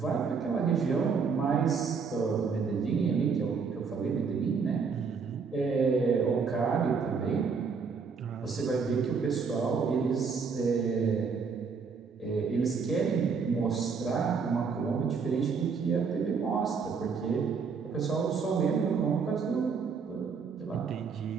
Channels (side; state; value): left; quieter; 5.5 dB